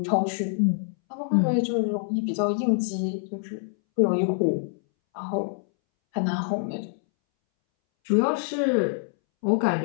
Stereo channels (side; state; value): right; silent; 61 dB below the other